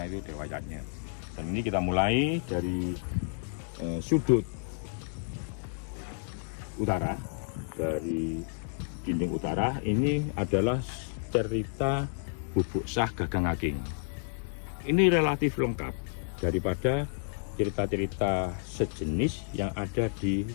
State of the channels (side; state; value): right; silent; digital silence